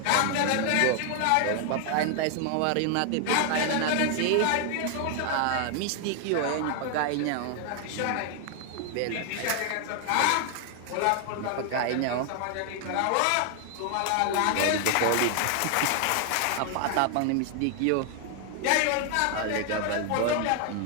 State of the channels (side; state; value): both; different; correlation 0.00